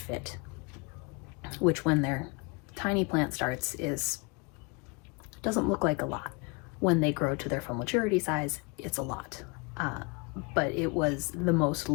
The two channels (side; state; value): right; quieter; 30.5 dB